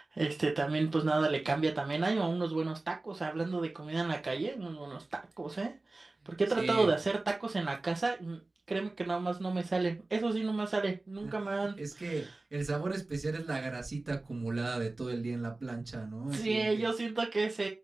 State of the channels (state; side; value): quieter; left; 3.1 dB